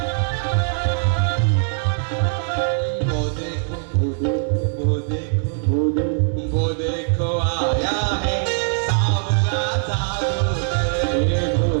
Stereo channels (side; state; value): left; silent; digital silence